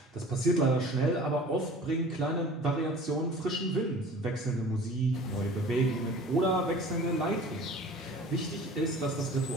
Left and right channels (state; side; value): normal; both; correlation 0.44